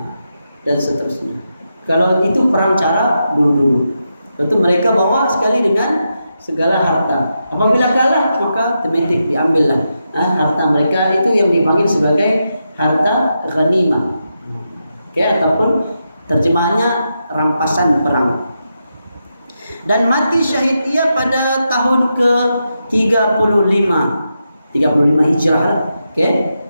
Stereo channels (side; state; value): both; inverted; correlation -0.86